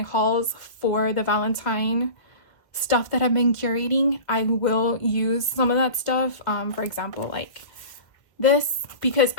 hauls for the Valentine stuff that I've been curating, I will use some of that stuff. For example, like this, because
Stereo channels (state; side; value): late; right; 1.6 ms